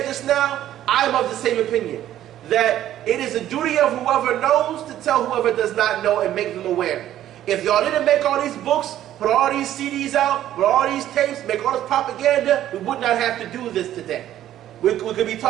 just now, I'm of the same opinion. That it is a duty of whoever knows to tell whoever does not know and make them aware. If y'all didn't make all these books, put all these CDs out, put all these tapes, make all this propaganda, we would not have to do this today. We could be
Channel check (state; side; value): quieter; left; 12.3 dB